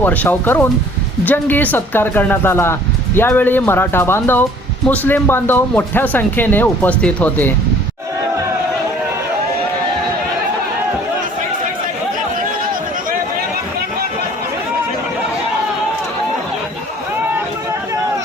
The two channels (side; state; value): both; normal; correlation 0.54